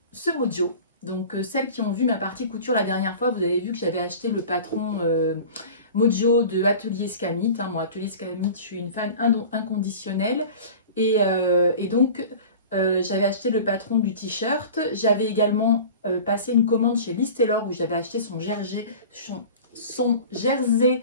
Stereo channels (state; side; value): inverted; both; correlation -0.39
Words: ce Mojo. Donc celles qui ont vu ma partie couture la dernière fois, vous avez vu que j'avais acheté le patron Mojo de Atelier Scamit. Moi, Atelier Scamit, je suis une fan inconditionnelle. Et donc, j'avais acheté le patron du t-shirt. J'avais également passé une commande chez Liz Taylor où j'avais acheté son jersey